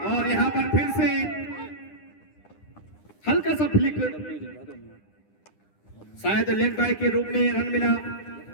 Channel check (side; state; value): right; late; 9.9 ms